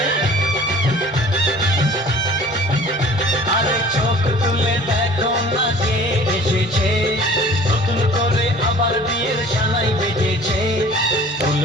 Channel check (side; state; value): both; normal; correlation 0.48